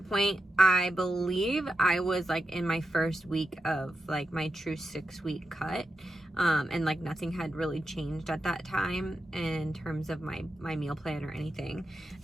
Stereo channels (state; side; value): normal; both; correlation 0.88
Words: point, I believe I was like in my first week of like my true 6-week cut. And like nothing had really changed at that time in terms of my meal plan or anything.